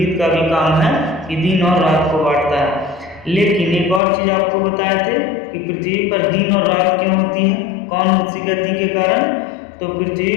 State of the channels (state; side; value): drops out; right; at 4.0 s